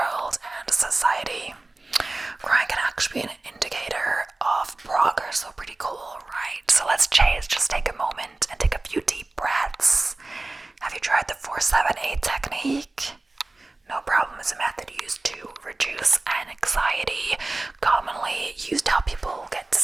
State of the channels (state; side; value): quieter; left; 3.0 dB